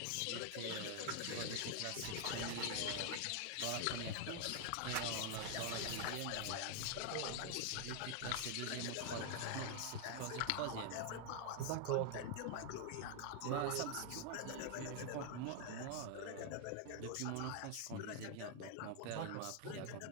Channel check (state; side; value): different; both; correlation 0.00